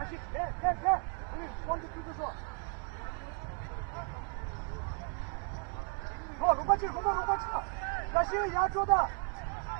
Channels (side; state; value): left; quieter; 38.8 dB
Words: it. Yeah. One, two, three, four. Go, 龙冠去，龙冠去了。小心压住的。